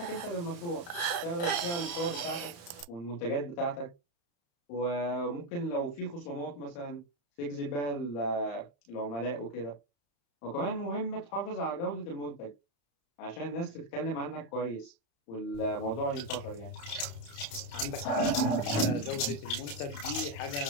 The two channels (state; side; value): late; right; 35 ms